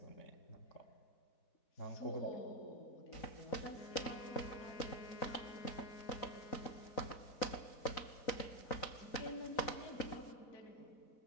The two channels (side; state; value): right; late; 3.9 ms